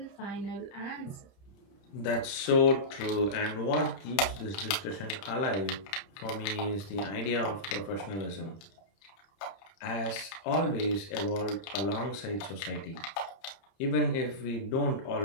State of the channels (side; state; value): right; late; 30 ms